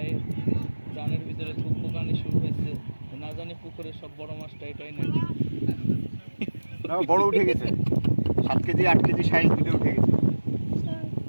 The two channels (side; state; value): both; inverted; correlation -1.00